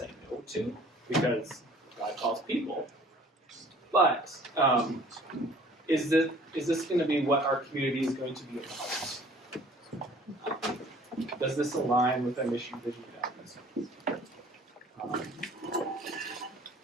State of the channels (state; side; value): normal; both; correlation 0.52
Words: no to, because God calls people. But is this going to be what our community is going to be about? Does this align with our mission, vision, values?